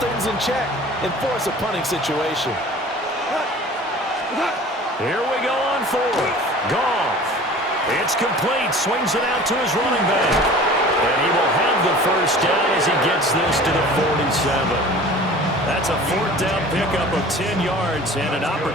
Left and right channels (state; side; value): normal; both; correlation 0.43